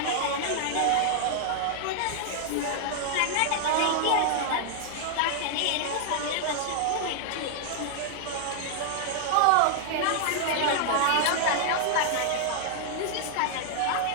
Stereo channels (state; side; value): different; both; correlation -0.01